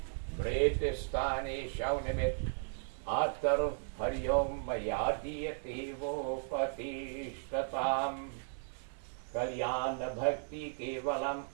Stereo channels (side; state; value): left; silent; digital silence